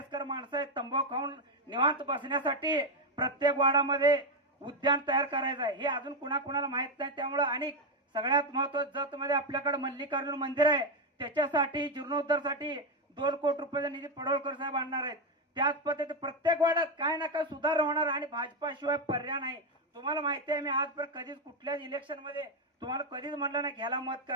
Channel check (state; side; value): normal; both; correlation 0.07